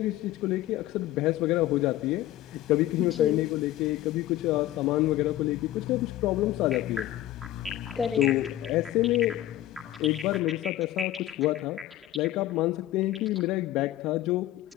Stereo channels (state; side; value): quieter; right; 14.4 dB